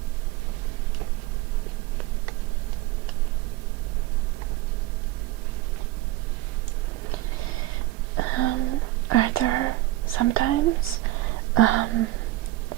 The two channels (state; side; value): quieter; left; 16.9 dB